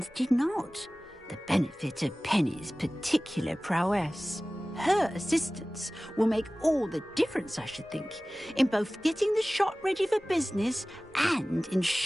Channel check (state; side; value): normal; both; correlation 0.98